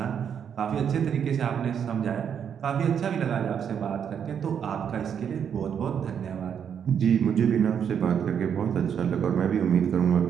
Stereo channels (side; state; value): left; quieter; 8.0 dB